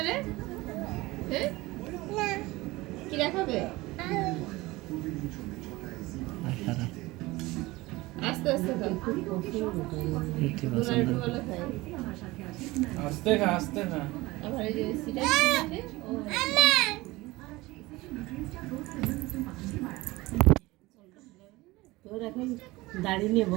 রে, কি দেখাবে? আস্তে আস্তে খাও, আস্তে খা আস্তে খা। আবার এই যে সিটা দিতে তোর এখন দাড়ি নিয়ে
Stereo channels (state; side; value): quieter; left; 20.5 dB